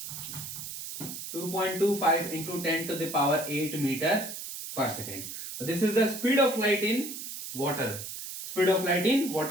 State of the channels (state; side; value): noise; right; hiss, 8 dB below the sound